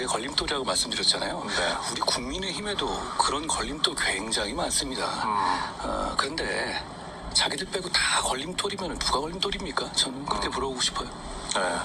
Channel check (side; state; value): both; identical; correlation 1.00